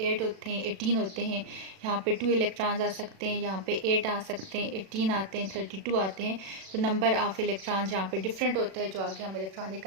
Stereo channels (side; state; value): left; late; 37 ms